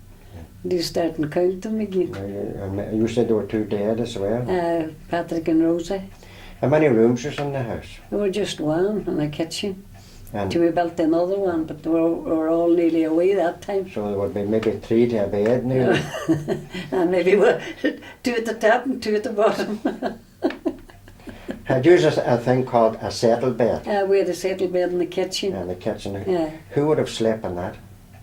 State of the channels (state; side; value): identical; both; correlation 1.00